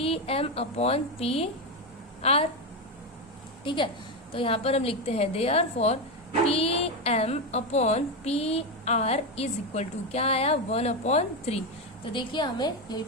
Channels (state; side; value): normal; both; correlation 0.11